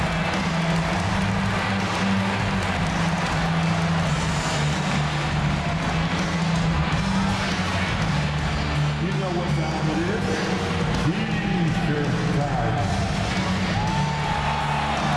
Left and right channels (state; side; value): identical; both; correlation 1.00